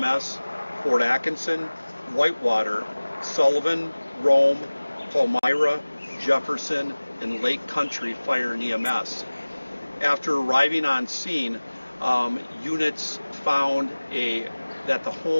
Fort Atkinson, Whitewater, Sullivan, Rome, Palmyra, Jefferson, and Lake Country Fire and EMS. After arriving on scene, units found that the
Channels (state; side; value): inverted; both; correlation -1.00